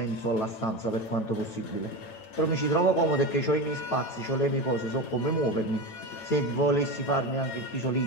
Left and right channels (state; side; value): late; right; 9.1 ms